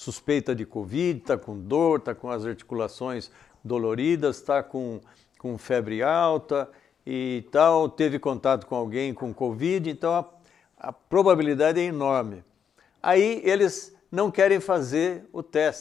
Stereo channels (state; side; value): quieter; right; 7.7 dB